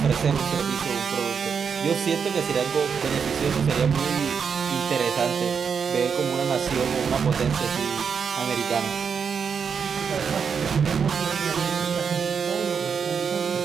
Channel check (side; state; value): left; quieter; 6.5 dB